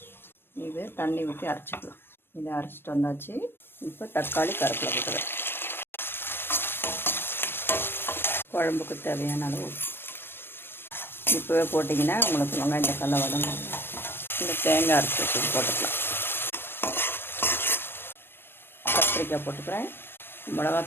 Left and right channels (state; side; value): late; right; 0.10 ms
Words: இது தண்ணி ஊற்றி அரைச்சிக்கலாம். இதை அரைச்சிட்டு வந்தாச்சு. இப்போ தக்காளி, கருவேப்பிலை போட்டுக்கிறேன். குழம்புக்கு தேவையான அளவு இப்போவே போட்டிங்கன்னா உங்களுக்கு வெங்காயம் தக்காளி வதங்கும். இந்த தேங்காய் அரைச்சி போட்டுக்கலாம். கத்திரிக்காய் போட்டுக்கிறேன்.